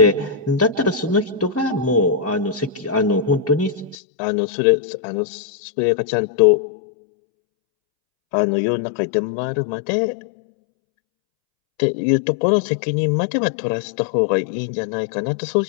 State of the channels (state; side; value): drops out; right; at 4.0 s